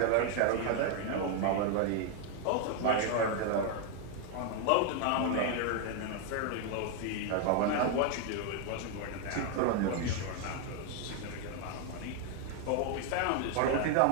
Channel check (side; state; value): both; different; correlation 0.01